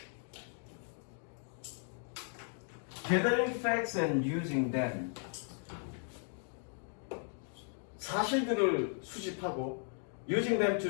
Gathering facts and using them. 사실들을 수집하고 using them to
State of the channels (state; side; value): silent; right; 53 dB below the other